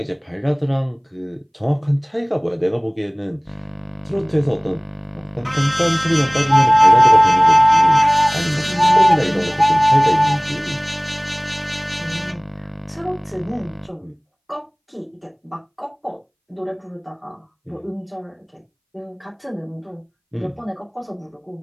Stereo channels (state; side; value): identical; both; correlation 1.00